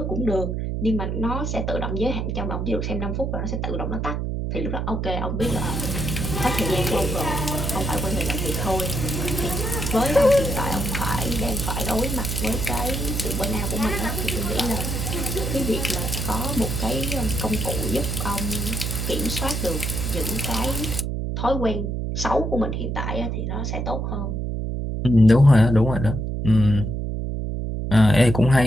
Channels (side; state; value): right; noise; hum, 2 dB below the sound